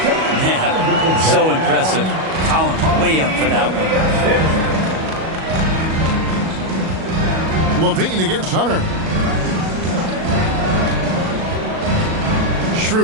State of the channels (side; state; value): left; late; 37 ms